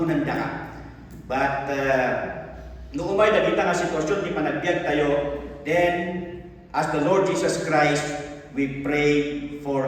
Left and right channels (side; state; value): both; identical; correlation 1.00